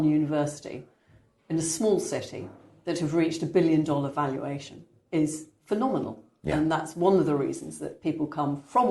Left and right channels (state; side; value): identical; both; correlation 1.00